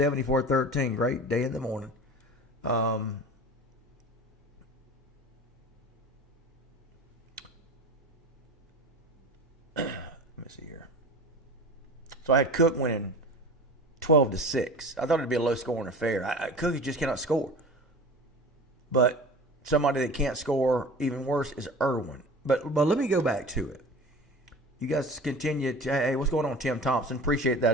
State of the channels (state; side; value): normal; both; correlation 0.36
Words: Great day in the morning. Let me see here. So I had Cook winning 12-6. I thought it'd be a low-scoring affair. Cook just cannot score. But somebody that can't score, even worse, is Irwin. But let me go back to it. You guys continue to, hey, what's going on, Tim Thompson? Appreciate